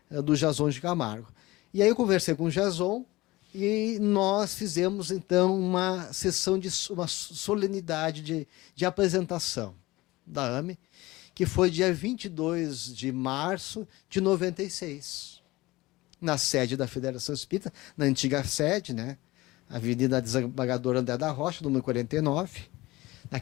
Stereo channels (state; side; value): quieter; right; 19.8 dB